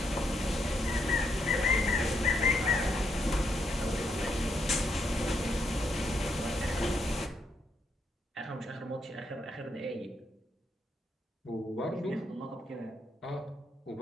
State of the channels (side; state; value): both; normal; correlation 0.77